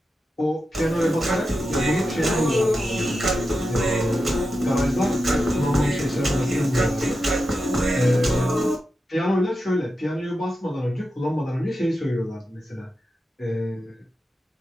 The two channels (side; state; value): both; normal; correlation 0.90